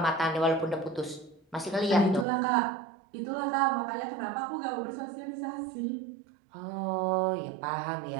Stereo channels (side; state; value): left; drops out; at 2.2 s